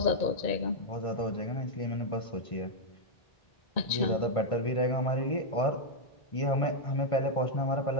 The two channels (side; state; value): right; late; 1.5 ms